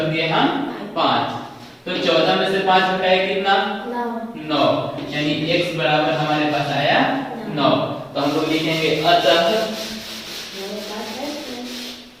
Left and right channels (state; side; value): identical; both; correlation 1.00